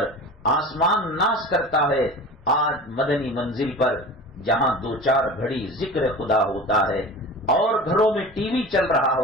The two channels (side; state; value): both; normal; correlation 0.35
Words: آسمان ناس کرتا ہے آج مدنی منزل پر جہاں 2-4 گھڑی ذکر خدا ہوتا ہے، اور گھروں میں ٹی وی چل رہا